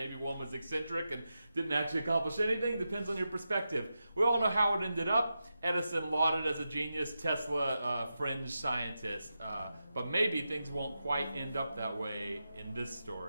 one was eccentric and didn't actually accomplish anything. Depends on your perspective. We all know how it ended up. Edison lauded as a genius, Tesla fringe scientist. But maybe things won't quite end up that way in this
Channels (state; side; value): inverted; both; correlation -0.89